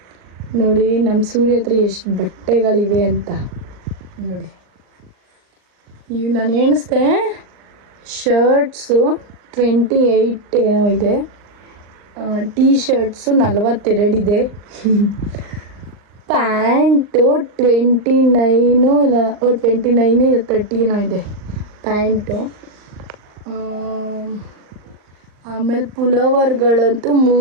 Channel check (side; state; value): left; late; 39 ms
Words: ನೋಡಿ, ನಮ್ಮ ಸೂರ್ಯ ಹತ್ರ ಎಷ್ಟು ಬಟ್ಟೆಗಳಿವೆ ಅಂತ ನೋಡಿ. ಇವು ನಾನು ಎಣಿಸ್ದೆ ಶರ್ಟ್ಸು 28 ಏನೋ ಇದೆ, ಟೀ ಶರ್ಟ್ಸು 42 ಇದೆ, ಪ್ಯಾಂಟು 29 ಇಲ್ಲ 29 30 ಏನೋ ಇದೆ ಪ್ಯಾಂಟು. ಆಮೇಲೆ ಪುಲೋವರ್ಗಳಂತೂ